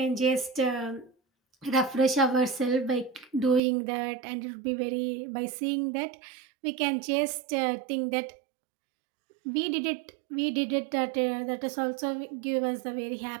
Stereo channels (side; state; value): left; drops out; at 3.6 s